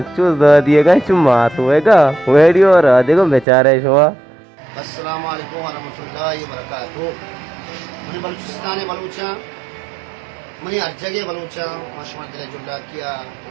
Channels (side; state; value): left; drops out; at 3.5 s